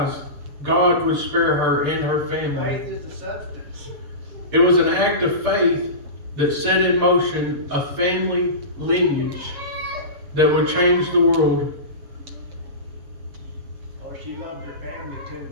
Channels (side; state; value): left; late; 6.7 ms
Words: God would spare her and her family. Faith is the substance. It was an act of faith that set in motion a family lineage that would change the world. Oh, she loved her family too.